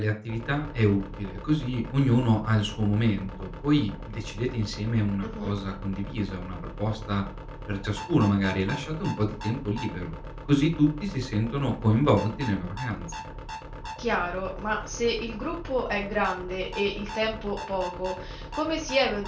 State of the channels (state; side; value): identical; both; correlation 1.00